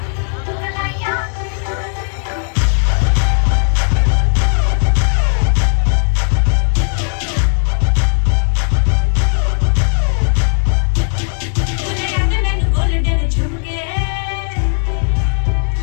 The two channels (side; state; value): right; silent; 64 dB below the other